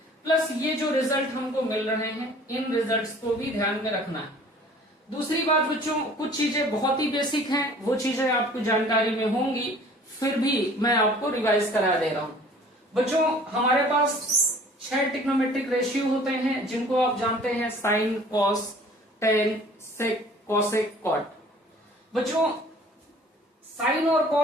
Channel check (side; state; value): both; normal; correlation 0.50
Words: प्लस ये जो रिजल्ट हमको मिल रहे हैं इन रिजल्ट्स को भी ध्यान में रखना है। दूसरी बात बच्चों, कुछ चीजें बहुत ही बेसिक हैं, वो चीजें आपको जानकारी में होंगी, फिर भी मैं आपको रिवाइज करा दे रहा हूं। बच्चों हमारे पास 6 ट्रिग्नोमेट्रिक रेशियो होते हैं जिनको आप जानते हैं साइन, कॉस, टेन, सेक, कोसेक, कॉट। बच्चों साइन और